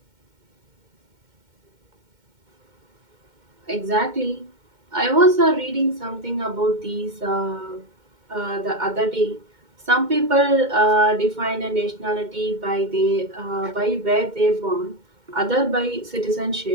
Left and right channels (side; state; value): left; late; 2.1 ms